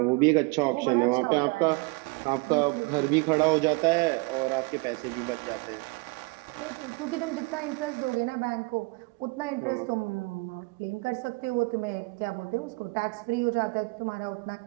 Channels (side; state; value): left; quieter; 28.1 dB